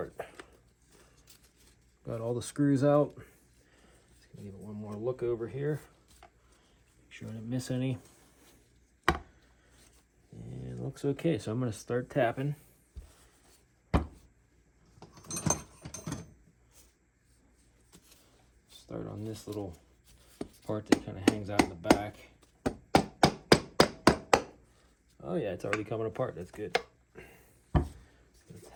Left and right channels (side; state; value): both; identical; correlation 1.00